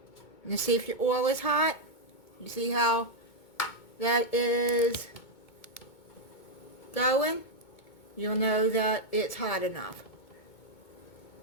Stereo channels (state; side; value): late; right; 2.2 ms